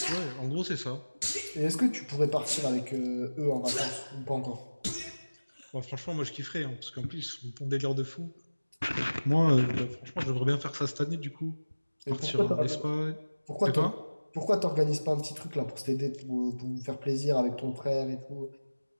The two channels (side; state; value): both; inverted; correlation -1.00